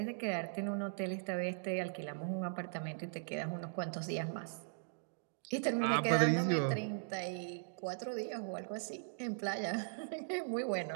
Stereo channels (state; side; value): silent; left; digital silence